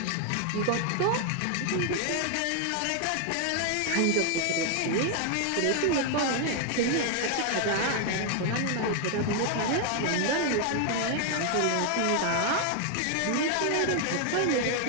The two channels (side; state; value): both; different; correlation 0.00